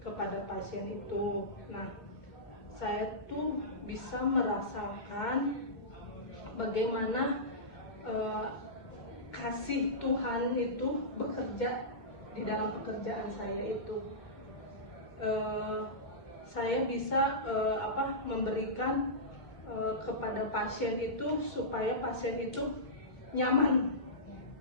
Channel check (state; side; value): late; right; 2.1 ms